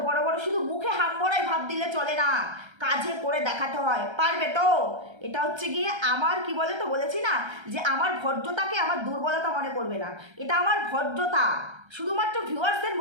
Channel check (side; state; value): left; late; 1.3 ms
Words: বড় বড় শুধু মুখে হামবড়াই ভাব দিলে চলে না, কাজে করে দেখাতে হয়। পারবে তো? এটা হচ্ছে গিয়ে আমার, কি বলে তো, বলেছি না যে আমার ভদ্রতাকে আমার দুর্বলতা মনে করবে না, এটা আমার ভদ্রতা। শুধুমাত্র ভিউয়ার্সদের